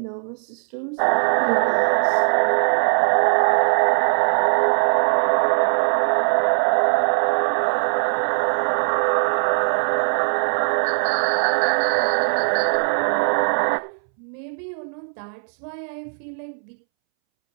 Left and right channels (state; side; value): silent; left; 66 dB below the other